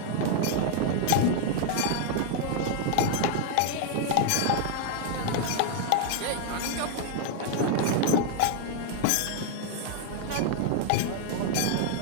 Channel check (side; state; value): both; different; correlation 0.00